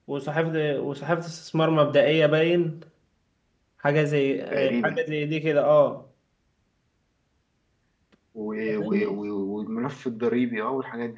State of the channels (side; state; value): both; identical; correlation 1.00